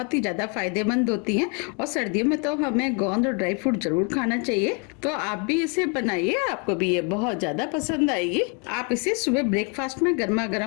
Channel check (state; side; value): quieter; right; 35.9 dB